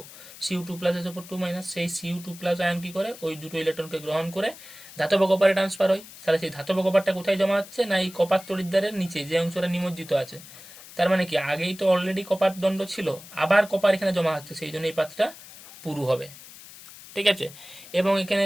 Cu2+ SO4 সেই Cu2+ আয়ন কি করে ওই দুটো ইলেকট্রনকে গ্রহণ করে ধাতব কপারে ট্রান্সফার হয়। তাহলে সেই ধাতব কপারটা কোথায় জমা হচ্ছে না এই কপার তড়িৎদ্বারের নিচে যে অংশটা নিমজ্জিত আছে। তার মানে কি আগেই তো অলরেডি কপার দণ্ড ছিল, আবার কপার এখানে জমা হচ্ছে, সেই জন্য এই পাতটা পুরু হবে। ঠিক আছে। এবং এখানে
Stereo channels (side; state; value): left; noise; hiss, 17 dB below the sound